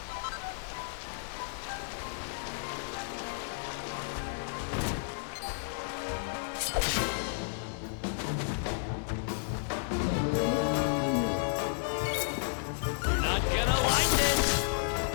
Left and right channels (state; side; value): silent; right; 56 dB below the other